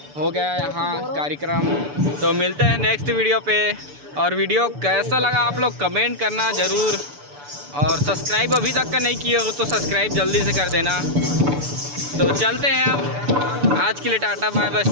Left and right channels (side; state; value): left; late; 6.9 ms